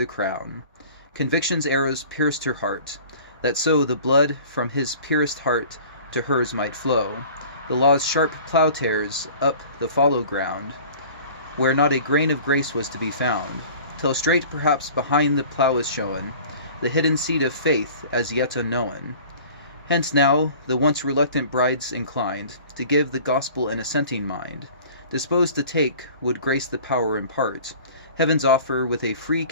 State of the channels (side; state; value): both; inverted; correlation -0.45